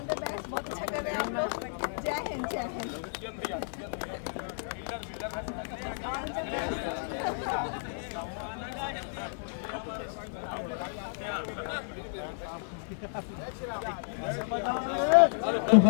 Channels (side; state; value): right; silent; 56 dB below the other